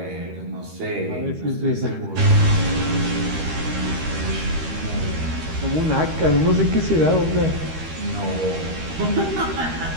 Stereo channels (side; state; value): left; late; 13 ms